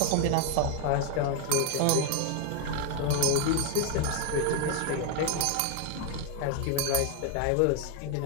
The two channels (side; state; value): both; different; correlation 0.01